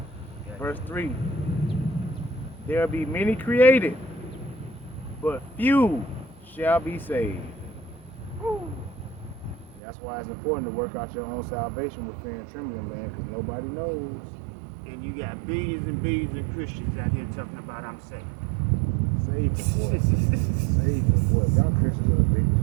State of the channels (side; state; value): left; drops out; at 9.8 s